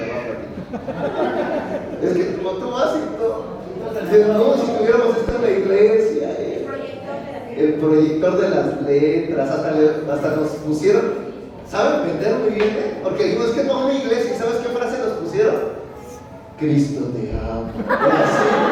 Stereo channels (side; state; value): both; identical; correlation 1.00